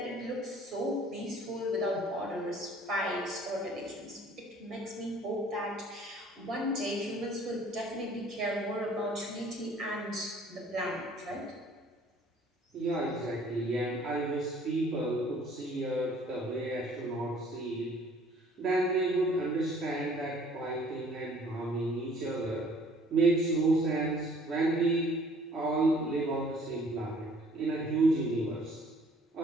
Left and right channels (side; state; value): both; normal; correlation 0.55